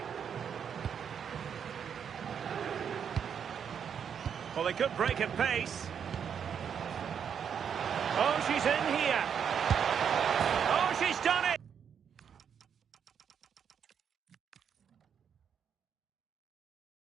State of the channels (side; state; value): left; quieter; 7.7 dB